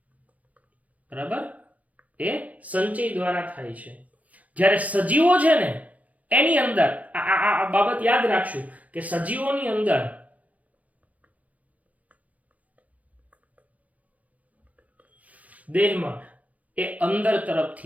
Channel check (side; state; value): left; late; 0.072 ms